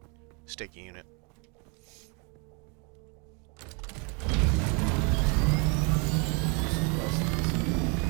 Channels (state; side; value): quieter; left; 33.8 dB